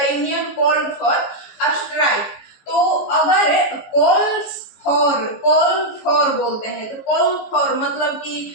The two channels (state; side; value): late; right; 15 ms